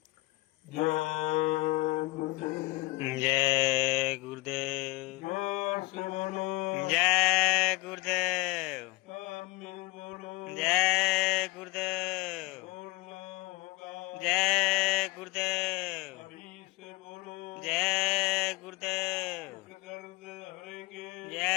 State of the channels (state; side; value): quieter; right; 22.9 dB